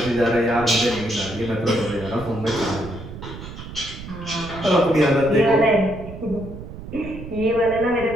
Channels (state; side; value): noise; right; rumble, 12 dB below the sound